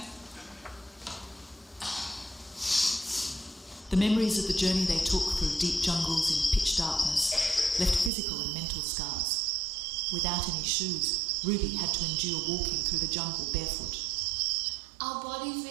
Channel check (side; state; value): left; drops out; at 8.1 s